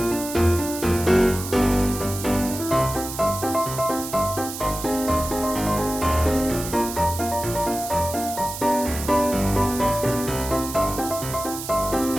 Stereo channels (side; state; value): right; noise; hiss, 9 dB below the sound